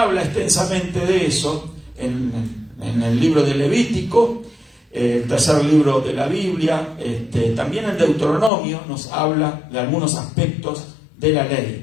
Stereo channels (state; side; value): drops out; right; at 8.5 s